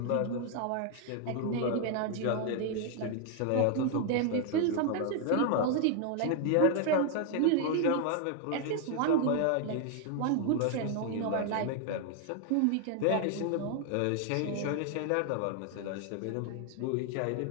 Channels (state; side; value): different; both; correlation 0.00